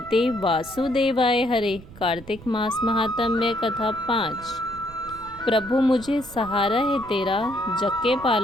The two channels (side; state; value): right; noise; rumble, 18 dB below the sound